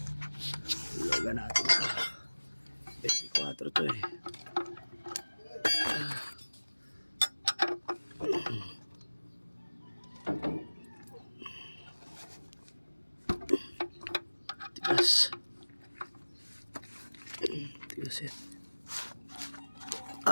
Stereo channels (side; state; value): both; inverted; correlation -1.00